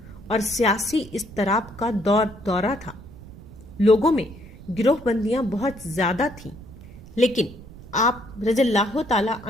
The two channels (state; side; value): noise; right; rumble, 17 dB below the sound